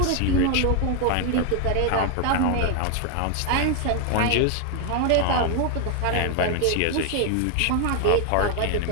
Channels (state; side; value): different; both; correlation 0.00